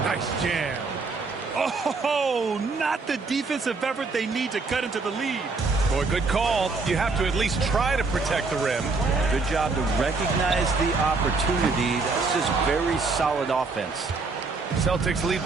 nice jam. Oh, not the defensive effort they need to cut into the lead. Boy, good call. You have to at least try to protect the rim. Good job to recognize the opportunity. That's just very solid offense. Celtics lead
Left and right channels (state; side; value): quieter; left; 4.1 dB